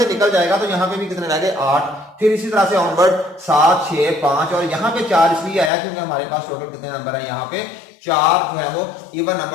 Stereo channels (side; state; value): right; drops out; at 5.7 s